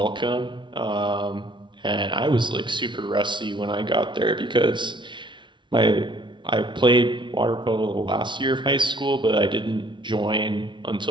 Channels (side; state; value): left; late; 0.23 ms